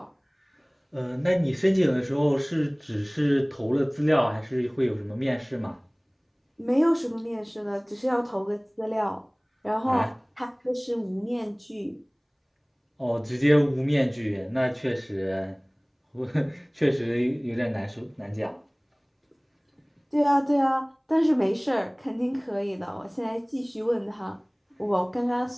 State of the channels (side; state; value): both; identical; correlation 1.00